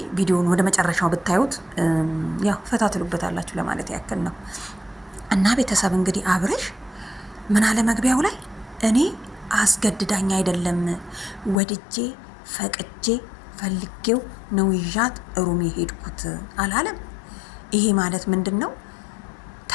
ቪዲዮን ወደ መጨረሻው ብታዩት ያው ፈታ ትሉበታላችሁ ለማለት ያክል ነው። እና ቤተሰብ እንግዲህ አብሬሽ ምን አለ መግቢያው ላይ እኔ አስገድዳኝ አይደለም ወድጄ ፈቅጄ ፈልጌው ነው ይዣት ሩም የሄድኩት አላለም። ይሄ ማለት ምንድን ነው?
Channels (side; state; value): right; drops out; at 11.6 s